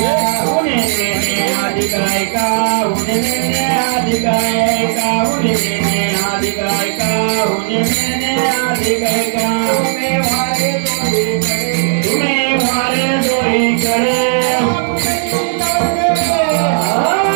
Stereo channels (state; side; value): silent; left; digital silence